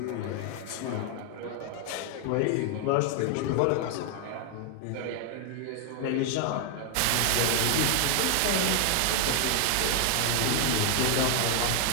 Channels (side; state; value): both; different; correlation 0.00